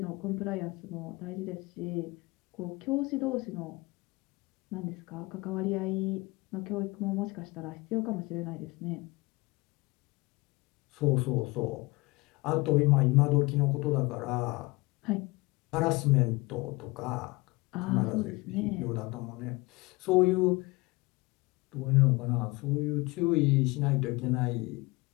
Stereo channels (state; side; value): quieter; right; 23.9 dB